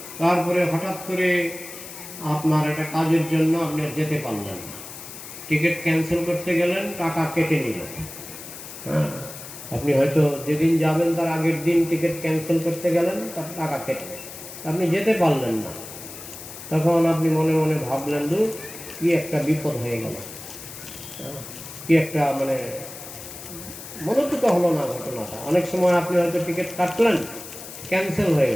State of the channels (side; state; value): left; noise; hiss, 13 dB below the sound